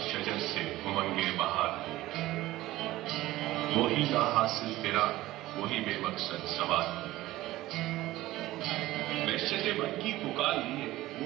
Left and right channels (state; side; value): quieter; left; 16.8 dB